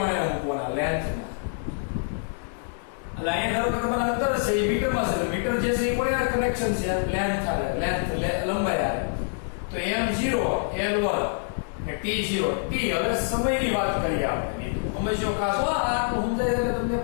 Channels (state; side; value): silent; right; digital silence